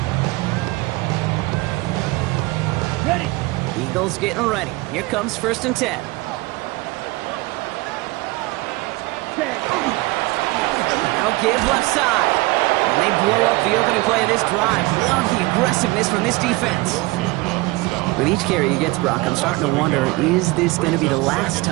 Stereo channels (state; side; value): quieter; left; 22.2 dB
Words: Ready. Eagles getting ready. Here comes 1st and 10. Set. Now give left side. And they blow up the opening play of this drive. Love the aggressiveness from this defense. With each carry he gets, Brock, I'm starting to wonder, is this going to be the last